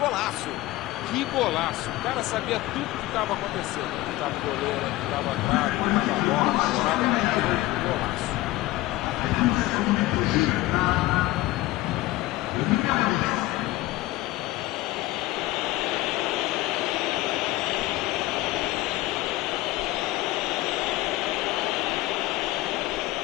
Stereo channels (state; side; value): quieter; right; 17.6 dB